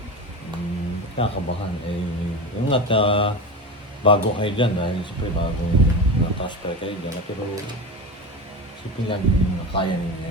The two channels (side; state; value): both; normal; correlation 0.24